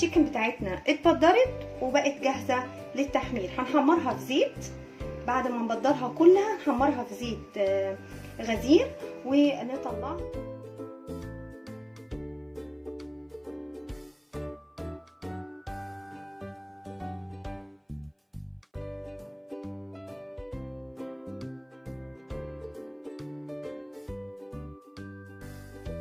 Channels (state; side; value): identical; both; correlation 1.00